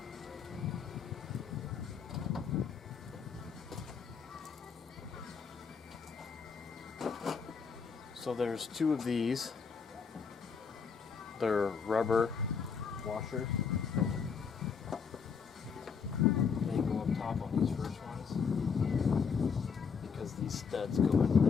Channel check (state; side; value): quieter; right; 6.0 dB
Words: So there's 2 of these. They're rubber washers. They go up top on these first ones because these studs go into